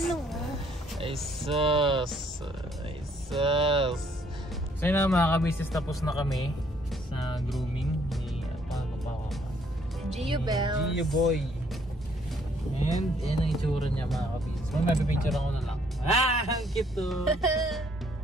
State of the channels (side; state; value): both; normal; correlation 0.65